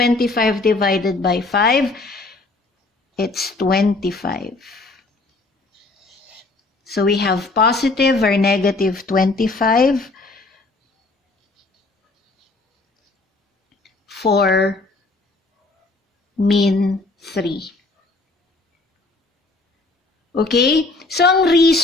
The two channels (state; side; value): quieter; right; 3.3 dB